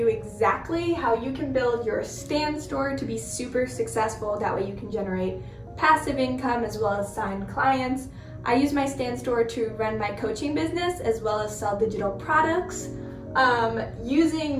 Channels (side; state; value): both; identical; correlation 1.00